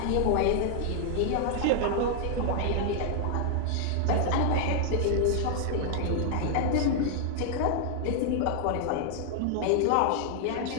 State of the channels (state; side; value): different; both; correlation 0.00